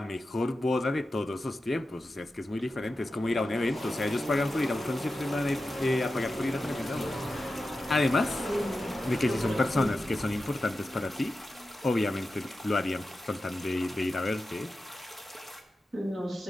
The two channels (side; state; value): both; normal; correlation 0.92